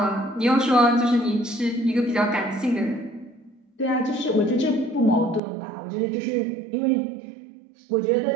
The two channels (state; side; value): drops out; left; at 5.4 s